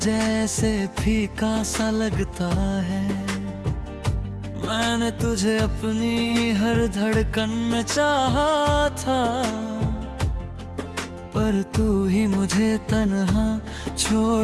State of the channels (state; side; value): identical; both; correlation 1.00